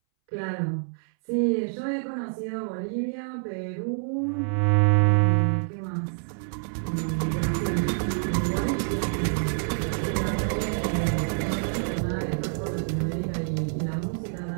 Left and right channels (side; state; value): left; silent; 60 dB below the other